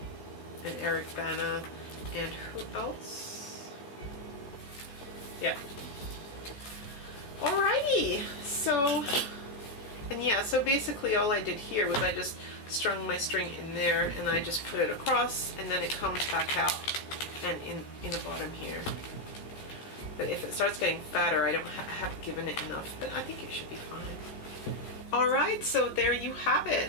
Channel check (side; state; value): right; late; 14 ms